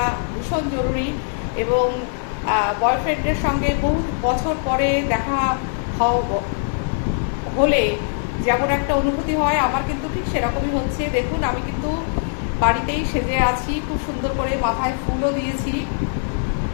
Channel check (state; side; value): silent; right; digital silence